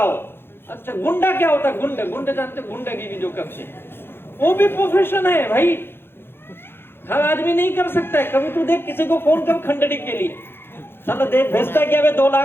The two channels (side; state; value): right; late; 0.11 ms